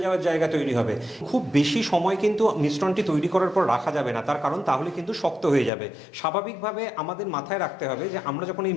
যাওয়ার জায়গা তৈরি হবে। খুব বেশি সময় কিন্তু মিশ্রণটি তৈরি করার পর রাখা যাবে না, তার কারণ তাহলে কিন্তু শক্ত হয়ে যাবে। স্বাভাবিকভাবে আমাদের মাথায় রাখতে হবে যে আমরা যখন এই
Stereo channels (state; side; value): drops out; right; at 5.7 s